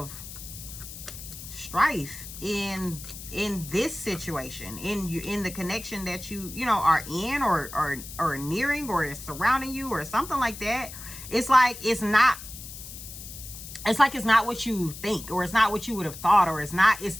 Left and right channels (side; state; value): left; noise; hiss, 12 dB below the sound